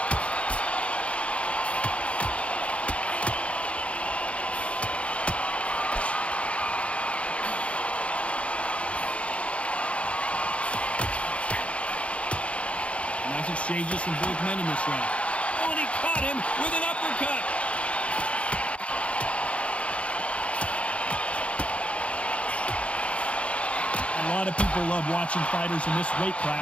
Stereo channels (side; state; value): right; late; 0.062 ms